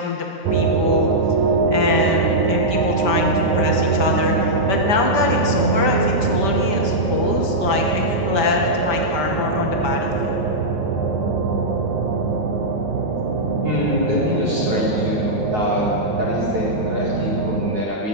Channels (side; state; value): left; late; 9.5 ms